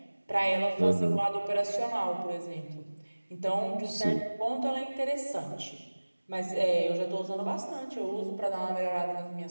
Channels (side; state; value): both; inverted; correlation -1.00